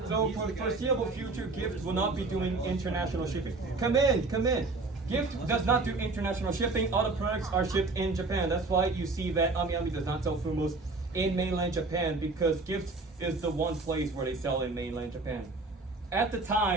So for the foreseeable future, Gift will not be doing international shipping. Come in. Gift does not do international shipping. All the products are shipped in Japan. That's why you see that Amiyami does not sell Fumos in mainland Japan, because Gift is the one place where they sell in mainland Japan. At the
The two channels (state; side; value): quieter; left; 3.5 dB